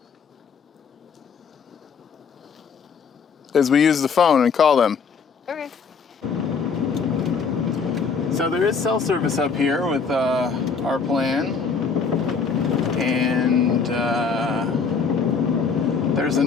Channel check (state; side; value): quieter; right; 5.5 dB